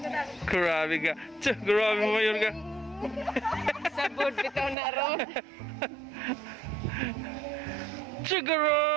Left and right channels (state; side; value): drops out; left; at 4.8 s